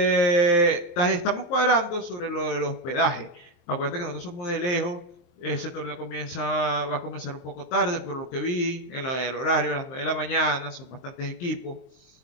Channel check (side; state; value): right; late; 23 ms